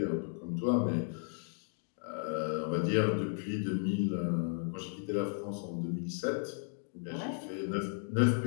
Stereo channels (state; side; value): silent; right; 55 dB below the other